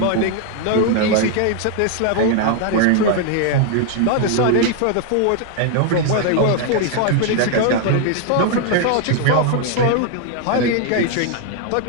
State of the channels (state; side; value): different; both; correlation 0.00